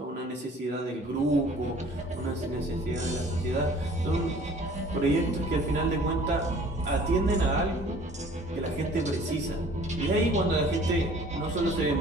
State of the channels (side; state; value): both; normal; correlation 0.51